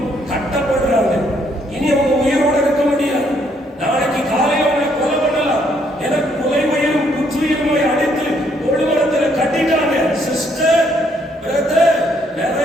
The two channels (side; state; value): both; normal; correlation 0.70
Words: கட்டப்படுறாங்க. இனி அவங்க உயிரோட இருக்க முடியாது. நாளைக்கு காலையில் அவங்களை கொலை பண்ணலாம். எனக்கு கொலை உயிரும் குற்றுயிருமாய் அடித்து தொழுமரத்தில் கட்டிட்டாங்க. சிஸ்டர், பிரதர்,